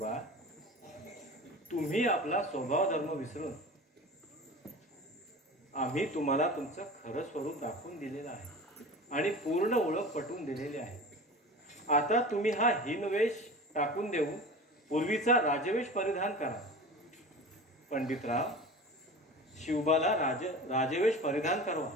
तुम्ही आपला स्वभाव धर्म विसरून आम्ही तुम्हाला तुमचं खरं स्वरूप दाखवून दिलेलं आहे आणि पूर्ण ओळख पटवून दिलेली आहे. आता तुम्ही हा हीनवेश टाकून देऊन पूर्वीचा राजवेश परिधान करा. पंडितराव, शिवबाला राजवेश परिधान करवा.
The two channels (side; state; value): both; normal; correlation 0.35